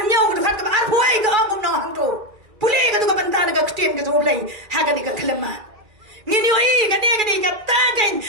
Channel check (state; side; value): late; left; 2.4 ms